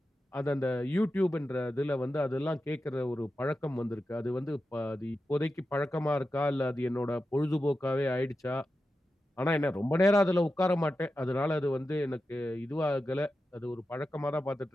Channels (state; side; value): normal; both; correlation 0.91